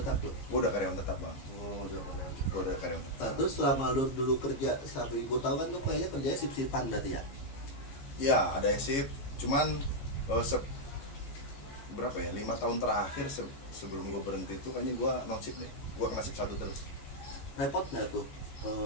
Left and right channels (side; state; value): right; late; 14 ms